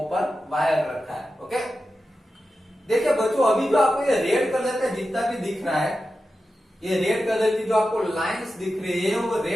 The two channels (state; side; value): normal; both; correlation 0.91